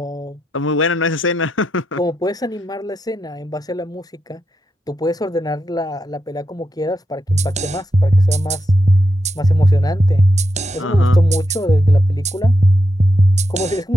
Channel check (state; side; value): normal; both; correlation 0.85